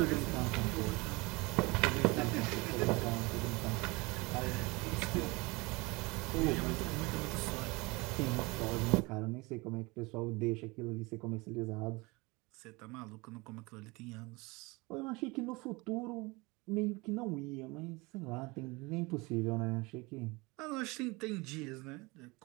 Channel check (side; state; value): left; quieter; 24.9 dB